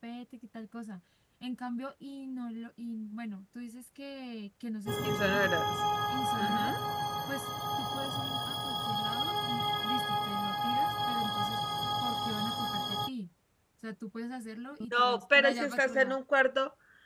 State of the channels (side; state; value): both; identical; correlation 1.00